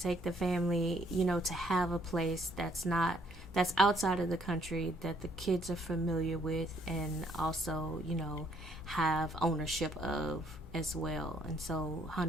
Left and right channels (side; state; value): both; normal; correlation 0.67